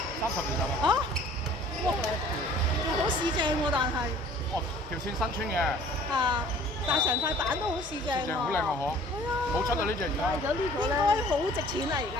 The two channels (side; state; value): both; normal; correlation 0.51